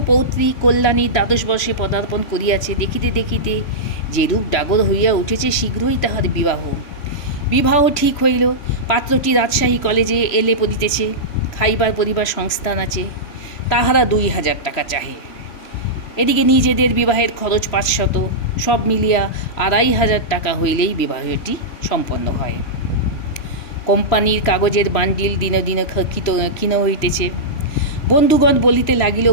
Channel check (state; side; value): late; right; 3.1 ms